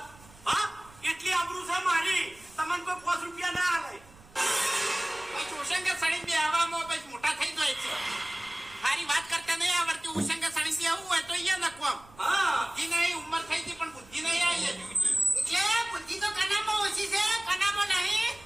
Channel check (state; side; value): noise; right; rumble, 24 dB below the sound